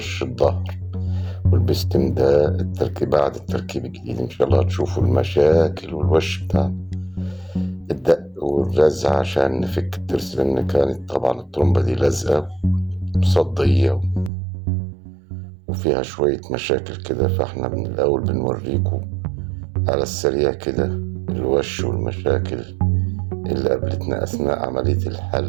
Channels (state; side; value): drops out; left; at 14.3 s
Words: الظهر. والبستم ده بعد التركيب الجديد ان شاء الله هتشوفوا المشاكل والوش بتاع الدق والرزع عشان نفك الترس، لان كانت طبعا الترومبة دي لازقة مصدية وفيها شوية مشاكل كده، فاحنا من الاول بنوريكم على السريع كده الوش والمشاكل اللي قابلتنا أثناء عملية